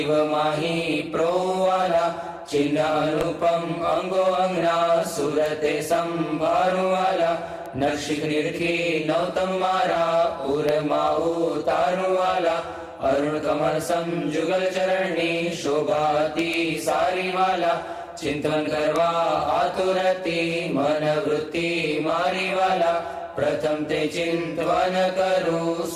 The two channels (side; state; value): both; identical; correlation 1.00